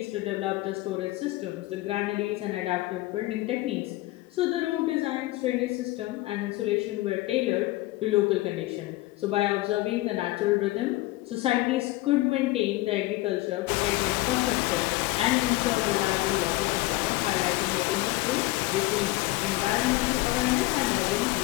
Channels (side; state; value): right; quieter; 19.1 dB